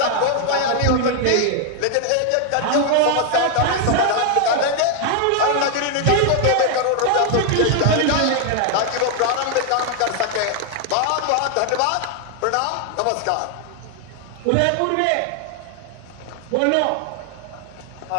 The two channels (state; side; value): different; both; correlation 0.00